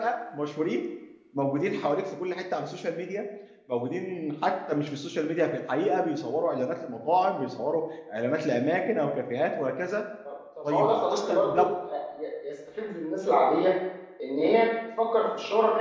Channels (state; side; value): identical; both; correlation 1.00